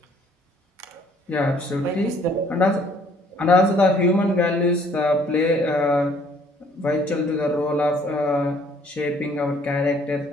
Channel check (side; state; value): both; normal; correlation 0.61